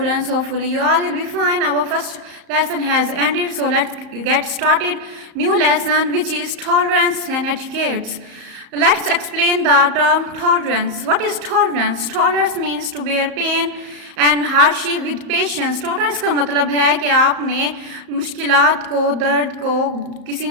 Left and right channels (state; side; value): late; left; 34 ms